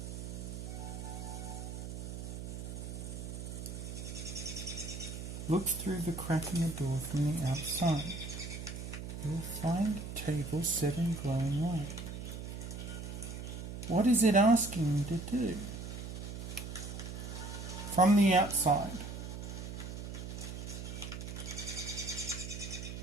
Look through the crack in the door from the outside. You will find a table set in glowing light. What is it asking me to do? From the outside.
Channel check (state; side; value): noise; right; hum, 7 dB below the sound